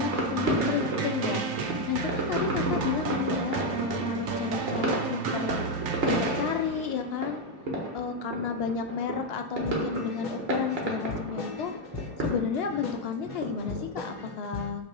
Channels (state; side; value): late; left; 2.9 ms